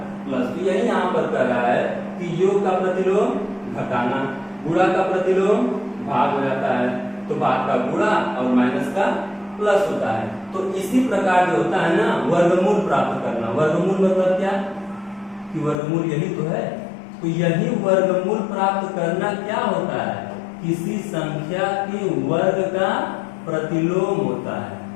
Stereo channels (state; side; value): drops out; right; at 15.8 s